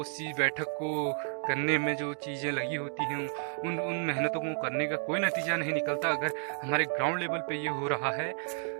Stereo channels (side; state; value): left; silent; digital silence